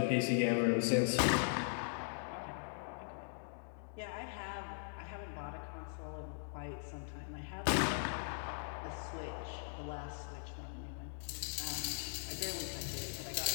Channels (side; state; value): right; silent; digital silence